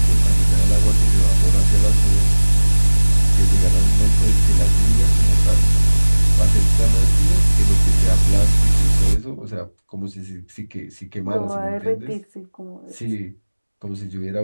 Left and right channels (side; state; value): both; inverted; correlation -1.00